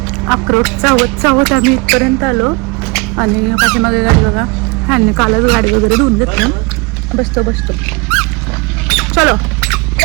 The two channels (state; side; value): quieter; left; 27.2 dB